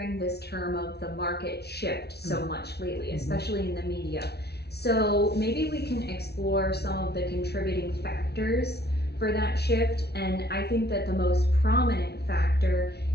this term of the market shift so much lately, especially in the media. So maybe we can explore some of the contributing factors for that shift. And I think that the most prominent factor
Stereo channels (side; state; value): right; late; 0.48 ms